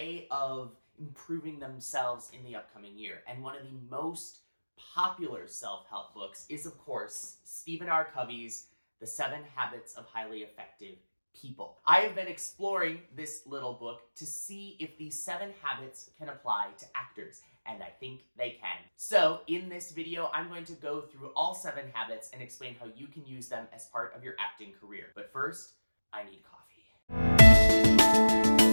of improving themselves in the upcoming year. And one of the most popular self-help books is, of course, Stephen R. Covey's The 7 Habits of Highly Effective People. I have been exploring this little book to see if these 7 habits can apply to actors, and I think they can. So in this video, I'm going to go through all 7 habits and explain how you can use them as part of your acting career. But first, I need coffee.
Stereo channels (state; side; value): inverted; both; correlation -1.00